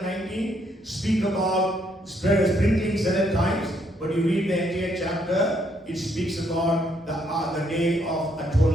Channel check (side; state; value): both; normal; correlation 0.71